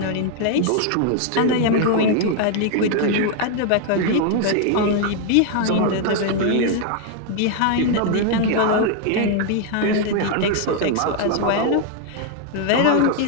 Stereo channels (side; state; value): both; different; correlation 0.00